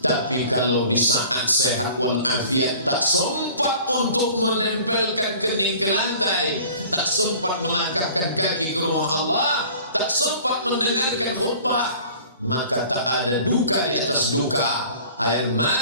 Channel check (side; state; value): both; inverted; correlation -0.47